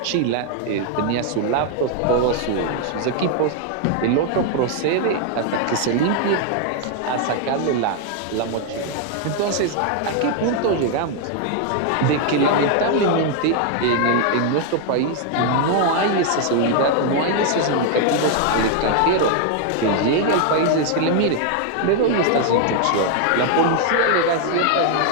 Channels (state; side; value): different; both; correlation 0.00